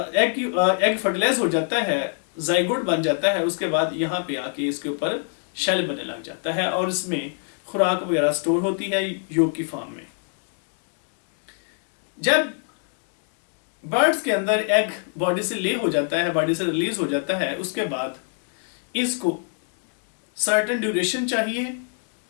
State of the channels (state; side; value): silent; right; 58 dB below the other